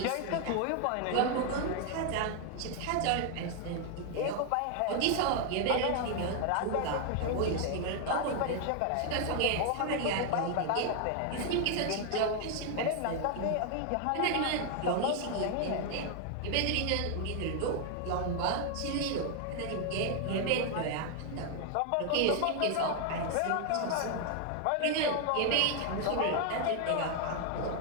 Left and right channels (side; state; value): both; different; correlation 0.00